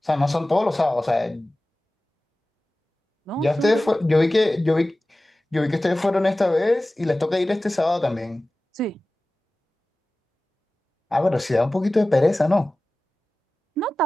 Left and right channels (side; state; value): both; normal; correlation 0.97